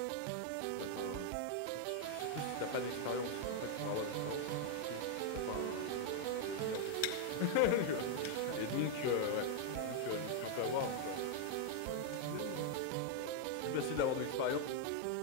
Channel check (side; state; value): both; different; correlation 0.00